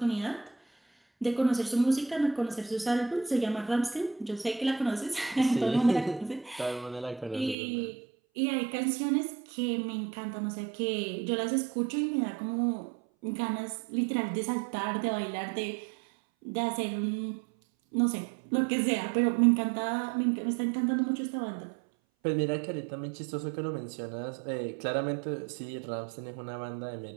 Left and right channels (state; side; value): drops out; left; at 7.6 s